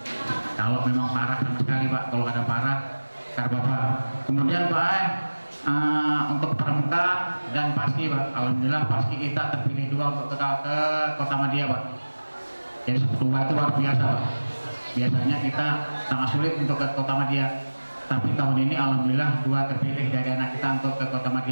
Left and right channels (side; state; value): both; inverted; correlation -1.00